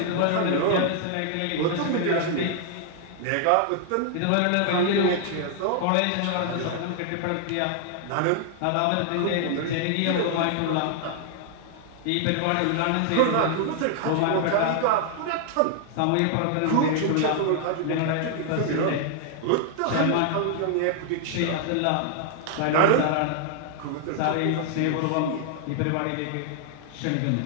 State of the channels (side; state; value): both; different; correlation 0.00